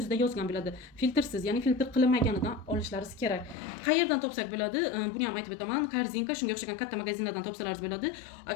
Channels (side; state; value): right; drops out; at 3.6 s